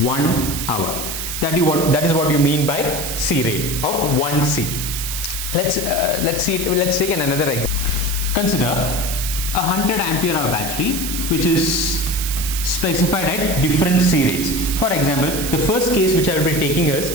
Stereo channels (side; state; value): right; noise; hiss, 5 dB below the sound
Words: hour. That is what you mean by C rate of 1C. Let's take another example. Consider a 100 ampere hour battery which is specified at different C rates. For example, the first case which I will be taking is